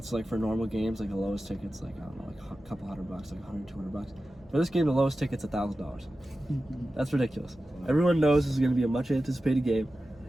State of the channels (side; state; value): both; normal; correlation 0.94